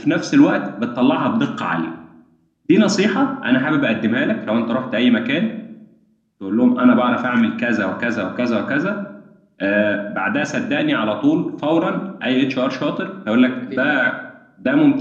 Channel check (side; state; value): both; identical; correlation 1.00